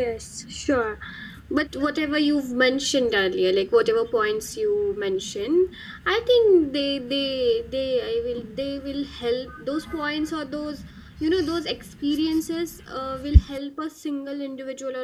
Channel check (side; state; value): both; identical; correlation 1.00